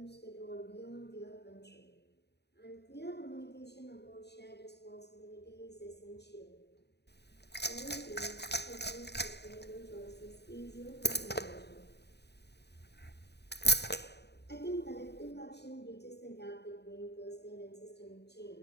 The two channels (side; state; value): right; late; 0.49 ms